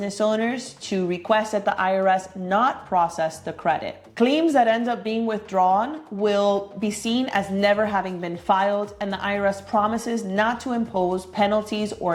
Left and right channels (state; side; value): identical; both; correlation 1.00